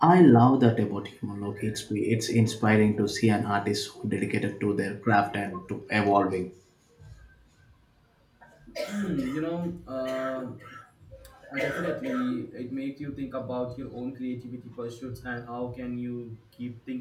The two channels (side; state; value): both; identical; correlation 1.00